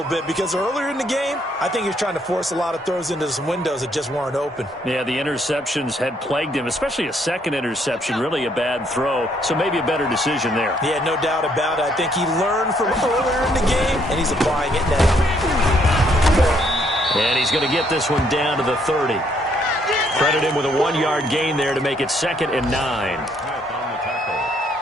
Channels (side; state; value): both; normal; correlation 0.69